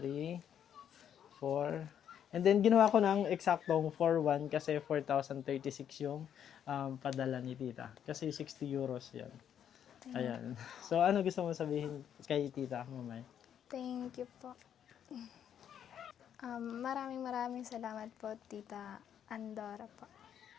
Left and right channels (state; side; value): quieter; right; 9.2 dB